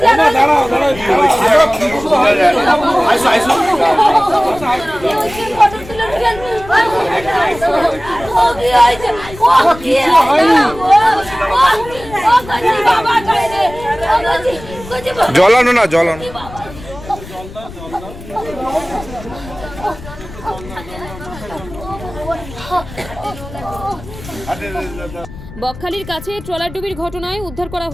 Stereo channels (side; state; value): left; noise; rumble, 15 dB below the sound